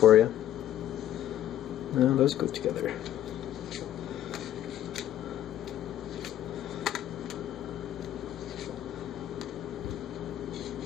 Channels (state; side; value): quieter; right; 12.0 dB